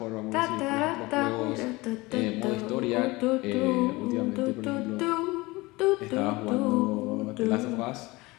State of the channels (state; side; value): quieter; right; 22.2 dB